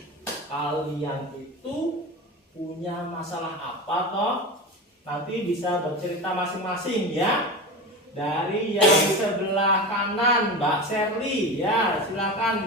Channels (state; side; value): normal; both; correlation 0.26